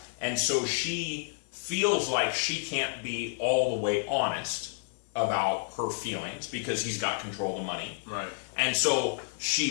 And so she feels like she can't be all the way honest about her feelings because he's got control of the money. Right. And so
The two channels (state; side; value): silent; right; 58 dB below the other